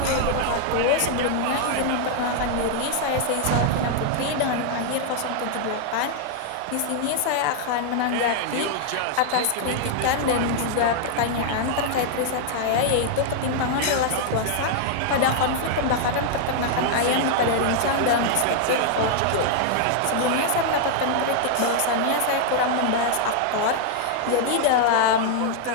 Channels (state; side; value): different; both; correlation -0.01